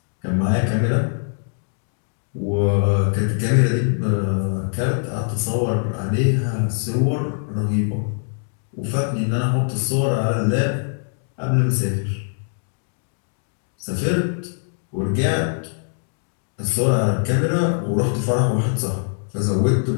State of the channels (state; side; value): silent; right; digital silence